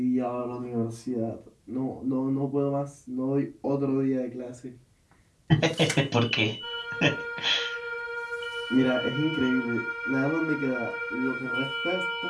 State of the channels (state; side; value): identical; both; correlation 1.00